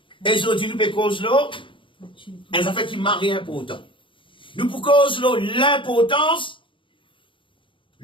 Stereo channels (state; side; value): late; right; 0.25 ms